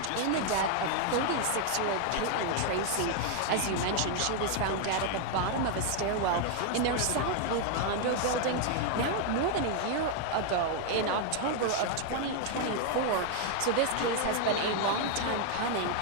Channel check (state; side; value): different; both; correlation 0.00